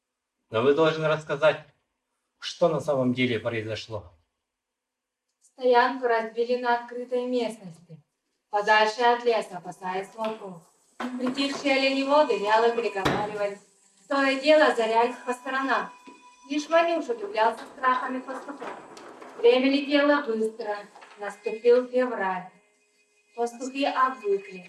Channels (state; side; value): identical; both; correlation 1.00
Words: Но вы должны рассказать, что на самом деле произошло. Стоянку разбили на открытой местности, подальше от леса, опасаясь волков. Притихшие оленеводы вяло переговаривались, то и дело озарялись по сторонам. Лишь Ванюша удивлялся страхами пастухов. Время летело быстро, наступил февраль. Пастухи